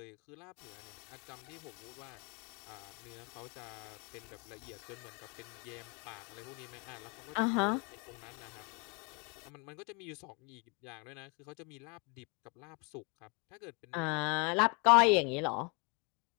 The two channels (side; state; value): right; quieter; 31.8 dB